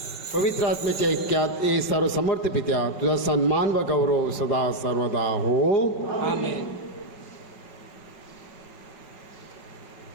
पवित्र आत्म्याच्या ऐक्यात ए सर्व समर्थ पित्या तुझा सन्मान व गौरव सदा सर्वदा हो. आमेन.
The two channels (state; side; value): late; right; 5.3 ms